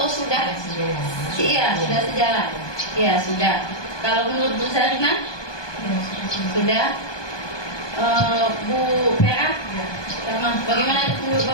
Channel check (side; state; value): right; late; 1.2 ms